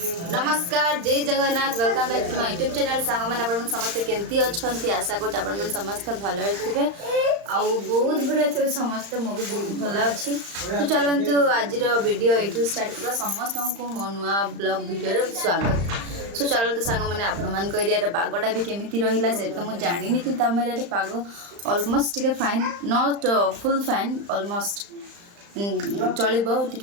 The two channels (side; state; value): left; late; 35 ms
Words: जय Jagannath welcome back to my YouTube channel song मैंने अपन समस्ते केमती अच्छी आशा कर अपन समस्ते भल थे आउ बहुत भीड़ थे समस्ते मु भी बहुत भल अच्छी तो चलतु आज वीडियो ये स्टार्ट कर समस्त को मो नुआ ब्लॉग वीडियो स्वागत सो चलते सांग मैंने आपण एरिया पागटा भी केमी रहा से तो मुझे जानी कि आम एरिया पाग अलमोस्ट टे fine not full fine almost चलो